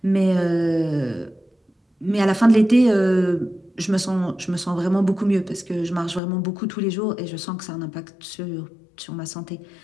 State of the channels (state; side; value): drops out; right; at 6.2 s